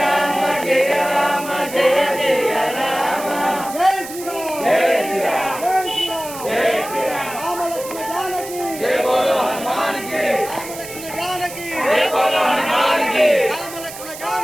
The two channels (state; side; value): noise; right; hiss, 12 dB below the sound